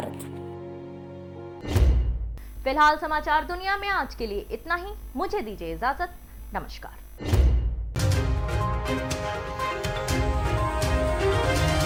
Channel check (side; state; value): both; identical; correlation 1.00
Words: फिलहाल समाचार दुनिया में आज के लिए इतना ही। मुझे दीजिए इजाजत। नमस्कार।